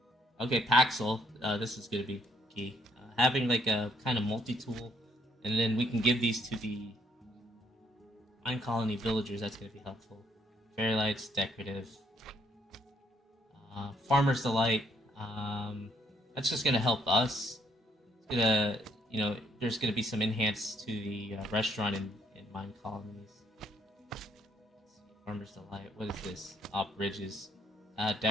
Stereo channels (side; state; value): both; normal; correlation 0.69